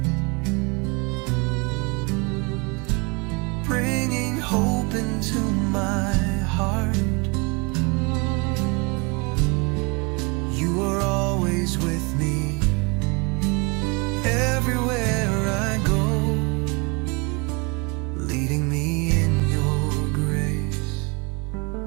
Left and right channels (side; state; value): left; quieter; 29.5 dB